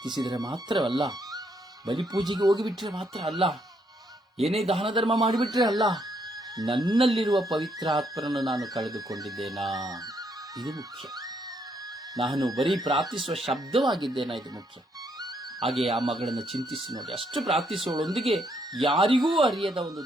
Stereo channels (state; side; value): normal; both; correlation 0.73